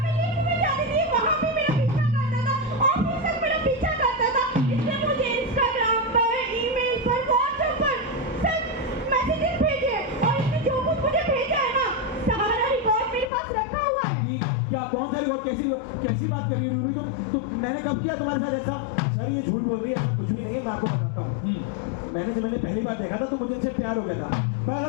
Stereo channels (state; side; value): drops out; right; at 13.3 s